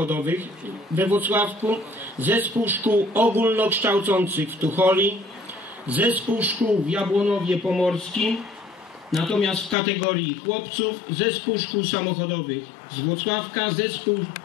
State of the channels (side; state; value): right; drops out; at 9.8 s